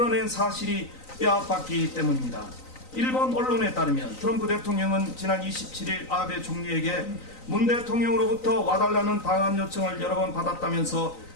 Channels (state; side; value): late; right; 3.9 ms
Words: 사실이 뼈아팠기 때문입니다. 일본 언론에 따르면 트럼프 대통령은 지난 27일 아베 총리에게 문 대통령으로부터 와달라는 방한 요청을 여러 번 받았다면서